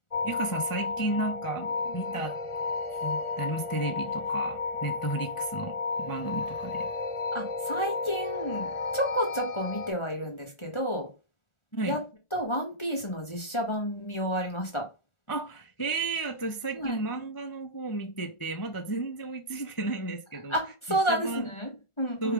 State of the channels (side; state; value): right; late; 1.4 ms